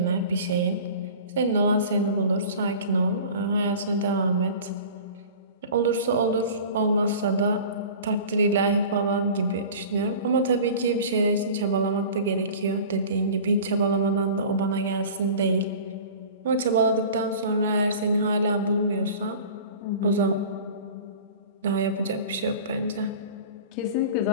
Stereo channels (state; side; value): inverted; both; correlation -0.39